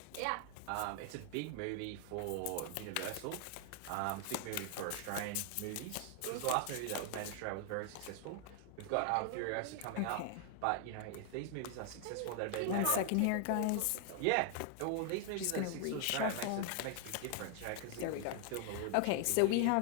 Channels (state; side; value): different; both; correlation 0.00